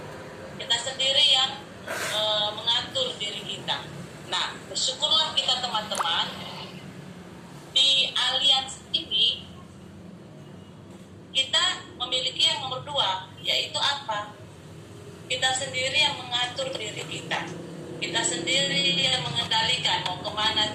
Kita sendiri yang mengatur diri kita. Nah, bersyukurlah kita teman-teman, di aliansi ini kita memiliki yang nomor 2, yaitu apa? Kita sendiri yang mengatur diri kita. Kita sendiri yang mengendalikan mau kemana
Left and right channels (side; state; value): both; identical; correlation 1.00